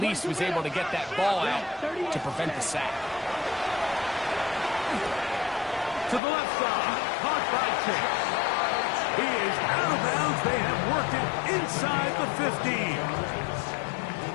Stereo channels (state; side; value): drops out; right; at 6.2 s